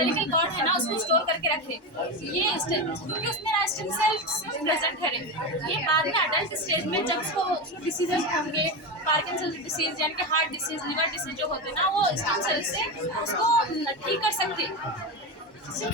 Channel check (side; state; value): right; late; 1.1 ms